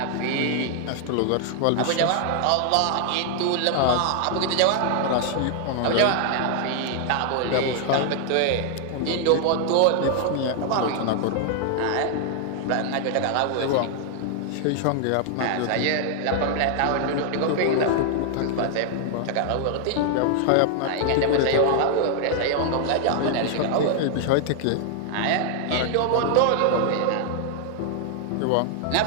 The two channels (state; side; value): different; both; correlation 0.00